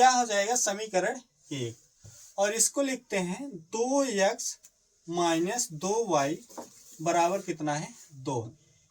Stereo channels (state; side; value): identical; both; correlation 1.00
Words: हो जाएगा समीकरण 1। और इसको लिखते हैं 2x माइनस 2y बराबर कितना है 2।